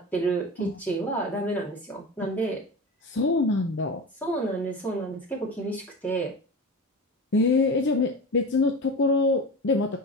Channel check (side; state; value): both; normal; correlation 0.28